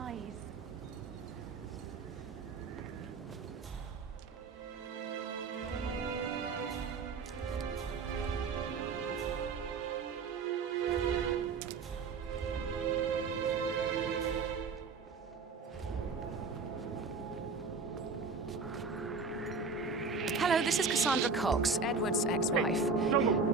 Hello, this is Cassandra Cox, Edward's ex-wife. I don't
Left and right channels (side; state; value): left; quieter; 4.6 dB